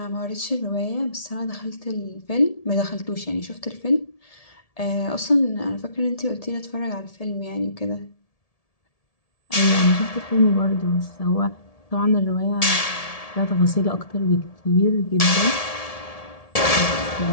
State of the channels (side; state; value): right; late; 1.7 ms